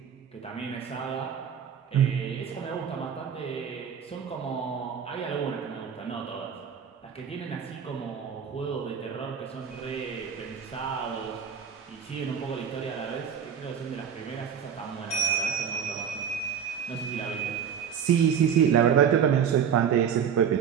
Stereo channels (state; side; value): quieter; left; 7.8 dB